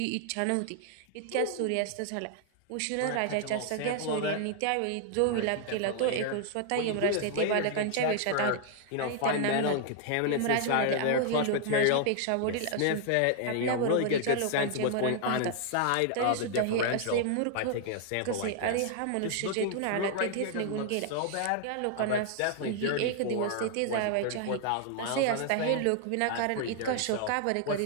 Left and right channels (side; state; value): both; different; correlation 0.00